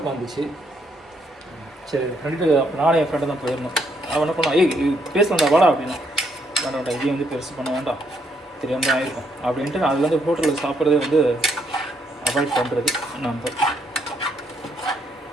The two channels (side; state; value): both; normal; correlation 0.73